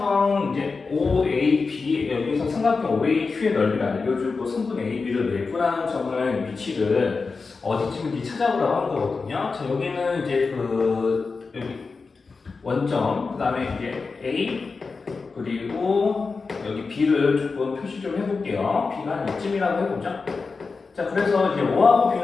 이제 OAB, 여기서 삼각형 OAQ의 넓이를 알려주고 성분 AB를 내분하는 점을 위치를 어디쯤인지 찾아보라고 하는 거거든요. 자, 여기는 이제 여기 원점, 그 다음에 이제 A, 그리고 여기 B를 조금 표시 좀 해볼게요. B가 한 이쯤이라고 해보죠. 자, 그래서 이제 O하고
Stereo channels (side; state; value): right; quieter; 4.4 dB